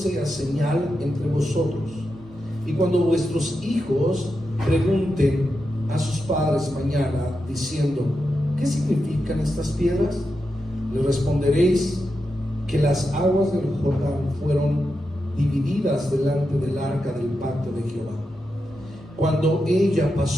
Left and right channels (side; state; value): both; normal; correlation 0.88